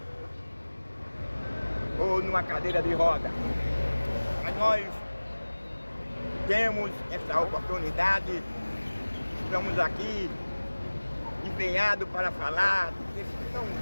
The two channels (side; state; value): both; inverted; correlation -1.00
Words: ou numa cadeira de roda. Mas nós temos essa oportunidade, estamos aqui empenhados para falar desse tão